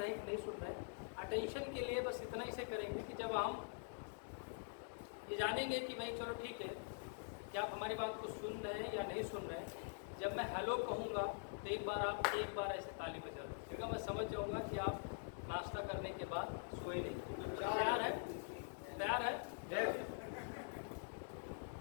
हैं कि नहीं सुन रहे हैं। अटेंशन के लिए बस इतना ही से करेंगे कि जब हम ये जानेंगे कि भाई चलो ठीक है कि आप हमारी बात को सुन रहे हैं या नहीं सुन रहे हैं, जब मैं हेलो कहूँगा तो एक बार ऐसे ताली बजा दीजिएगा। मैं समझ जाऊँगा कि आप नाश्ता करने के बाद सोए नहीं। तैयार है? तैयार है?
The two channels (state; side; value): silent; right; digital silence